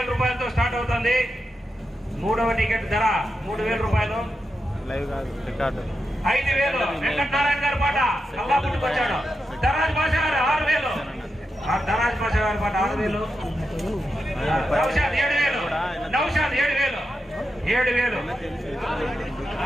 రూపాయలతో స్టార్ట్ అవుతుంది. మూడవ టికెట్ ధర 3,000 రూపాయలు. 5,000 వెంకటనారాయణ గారి పాట కల్లా పుట్టుకొచ్చాడు. ధరాజ్ భాష గారు 6,000. ధరాజ్ భాష గారి పాట 6,000. నౌషాద్ 7,000. 7,000.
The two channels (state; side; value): normal; both; correlation 0.88